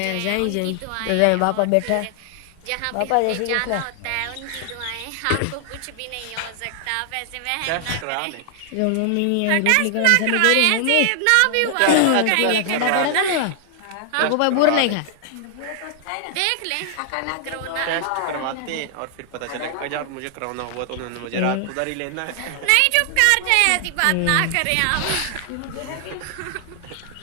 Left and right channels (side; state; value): both; different; correlation 0.00